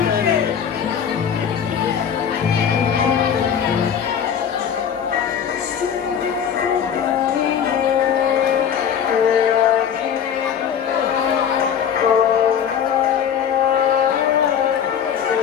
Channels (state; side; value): quieter; right; 8.1 dB